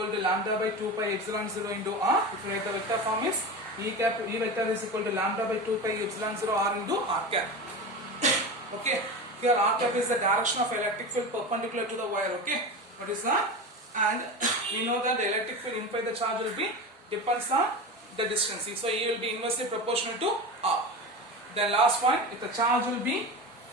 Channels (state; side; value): normal; both; correlation 0.26